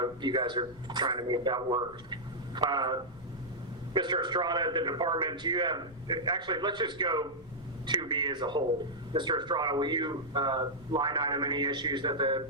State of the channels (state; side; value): noise; left; rumble, 23 dB below the sound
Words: you guys are trying to make that work. Mr. Estrada, the department, do you have, actually, let's just go 2B as a whole. Mr. Estrada, will you line item any issues that the